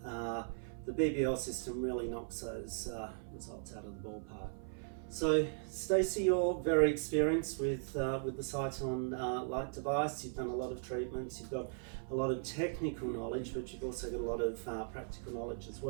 The BBL system really knocks those results out of the ballpark. So, Stacey, you're very experienced with the Sciton light device. You've done a lot of treatments, you've got a lot of technical knowledge, but you've also got a lot of practical knowledge as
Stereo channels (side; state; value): left; silent; 52 dB below the other